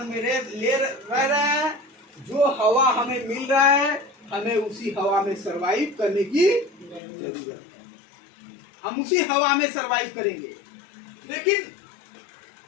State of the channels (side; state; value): right; drops out; at 7.0 s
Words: में रह रहे हैं, जो हवा हमें मिल रहा है, हमें उसी हवा में सरवाइव करने की जरूरत है। हम उसी हवा में सरवाइव करेंगे। लेकिन